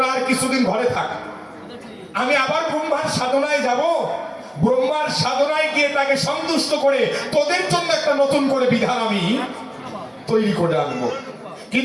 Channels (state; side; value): identical; both; correlation 1.00